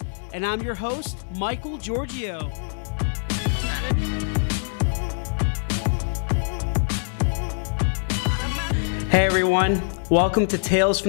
And I'm your host, Michael Giorgio. Hey everyone, welcome to Tales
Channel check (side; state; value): right; silent; digital silence